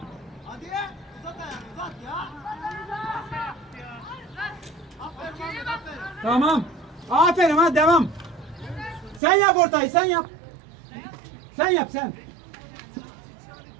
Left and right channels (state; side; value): drops out; left; at 9.2 s